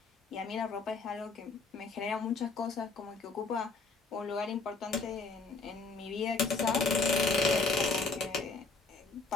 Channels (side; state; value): right; quieter; 4.2 dB